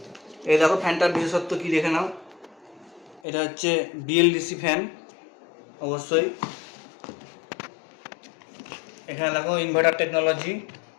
এই দেখো ফ্যানটার বিশেষত্ব কি দেখে নাও। এটা হচ্ছে বিএলডিসি ফ্যান, অবশ্যই। এখানে দেখো inverter technology,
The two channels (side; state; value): right; drops out; at 3.2 s